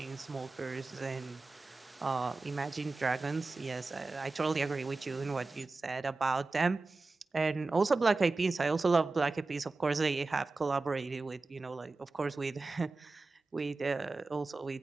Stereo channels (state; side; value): quieter; left; 3.6 dB